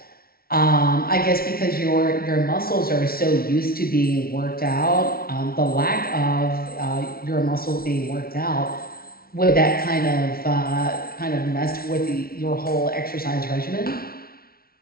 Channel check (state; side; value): late; right; 0.44 ms